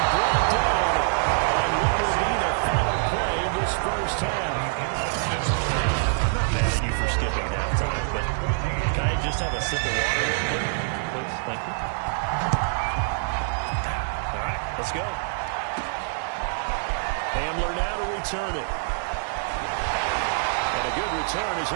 brought down on what will be the final play of this first half. I'm not mad at you for skipping halftime, but can I just have a sip of water real quick, please? Thank you. All right, let's go. Hamler now to return it. And a good return as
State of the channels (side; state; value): left; silent; digital silence